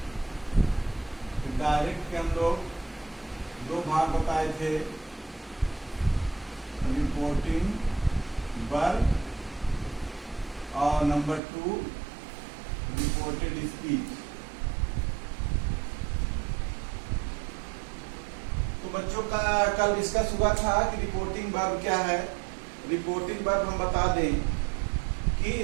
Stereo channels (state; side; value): drops out; left; at 11.4 s